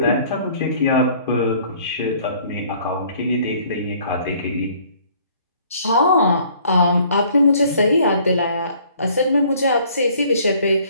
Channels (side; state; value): both; inverted; correlation -0.57